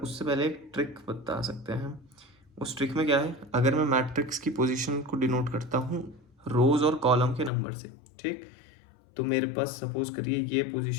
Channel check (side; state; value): right; drops out; at 7.5 s